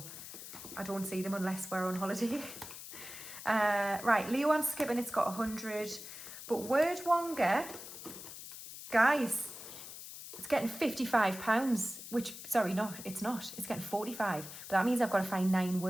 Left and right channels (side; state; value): left; noise; hiss, 12 dB below the sound